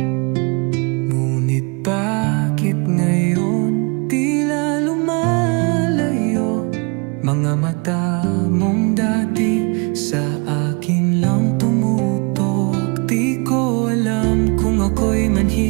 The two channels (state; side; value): quieter; left; 31.9 dB